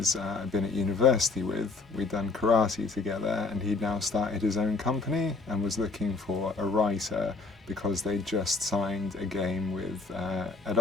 I'd been at university with. We'd done karate together, and he'd now started his own company and was looking for a writer because they'd just signed a game with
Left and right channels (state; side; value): quieter; right; 4.0 dB